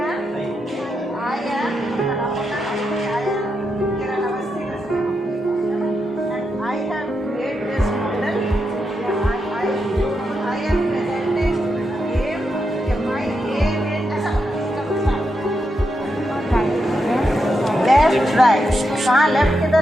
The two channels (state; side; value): normal; both; correlation 0.84